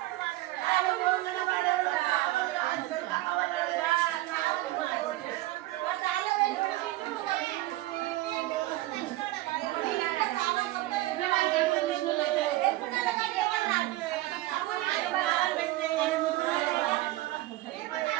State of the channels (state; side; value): quieter; left; 17.4 dB